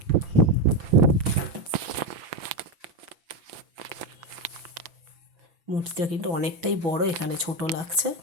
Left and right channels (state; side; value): late; left; 5.9 ms